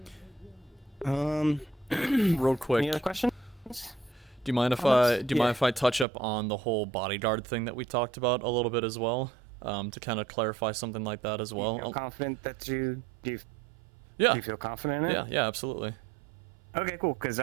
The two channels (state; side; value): drops out; left; at 6.1 s